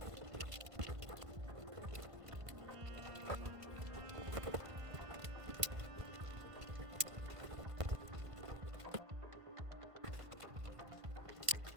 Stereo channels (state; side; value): late; left; 1.7 ms